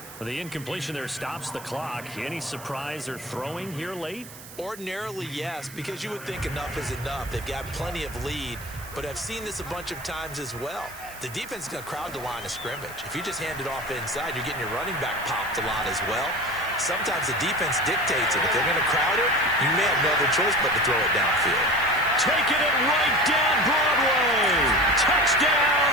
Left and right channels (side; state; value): right; noise; hiss, 16 dB below the sound